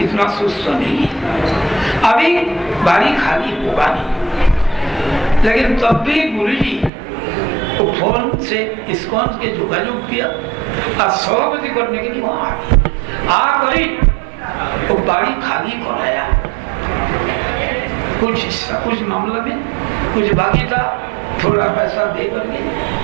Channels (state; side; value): drops out; left; at 6.9 s